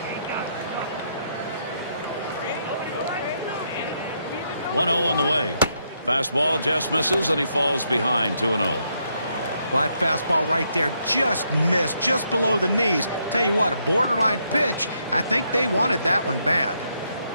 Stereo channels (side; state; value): both; inverted; correlation -0.77